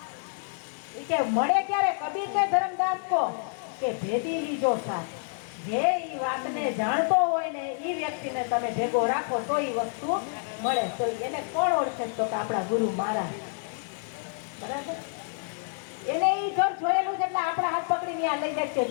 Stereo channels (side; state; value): right; silent; digital silence